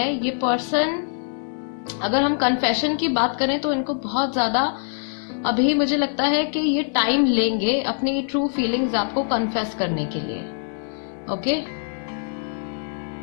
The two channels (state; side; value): silent; right; digital silence